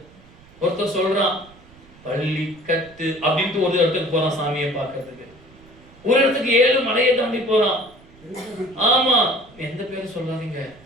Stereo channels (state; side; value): noise; right; rumble, 25 dB below the sound